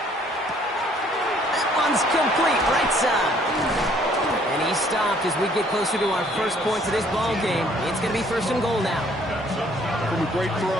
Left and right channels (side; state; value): both; normal; correlation 0.61